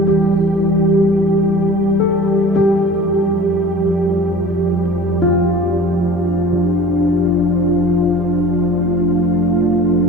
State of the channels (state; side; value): normal; both; correlation 0.41